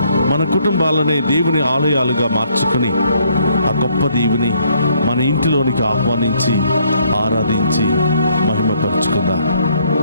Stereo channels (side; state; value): both; inverted; correlation -0.68